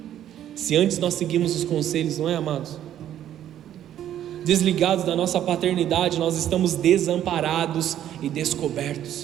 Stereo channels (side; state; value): left; quieter; 11.2 dB